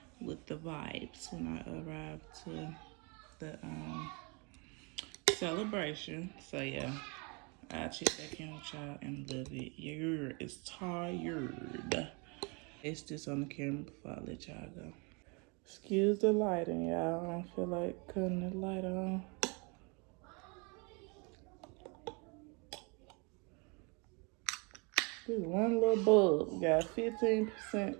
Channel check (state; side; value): quieter; left; 31.4 dB